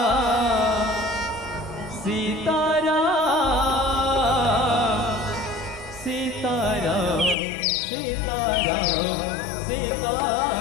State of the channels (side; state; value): right; drops out; at 7.4 s